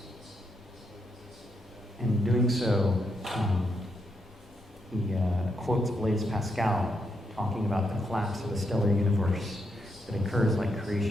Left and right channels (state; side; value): normal; both; correlation 0.80